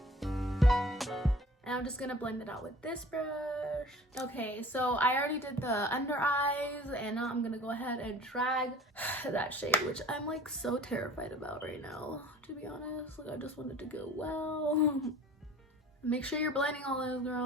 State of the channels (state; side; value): normal; both; correlation 0.47